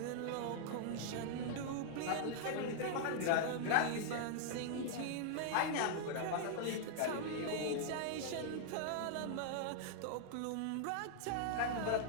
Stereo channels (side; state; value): both; different; correlation -0.01